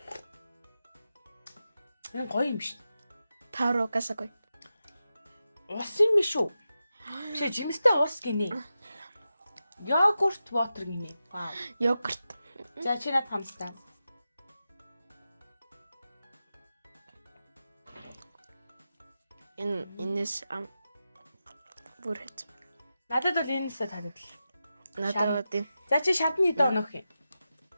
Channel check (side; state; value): both; inverted; correlation -0.91